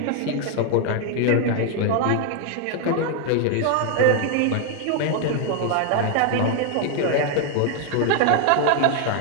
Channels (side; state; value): both; different; correlation 0.00